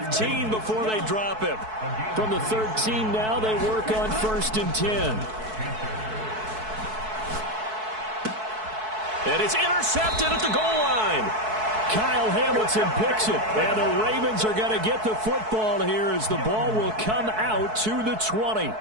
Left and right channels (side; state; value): left; late; 4.6 ms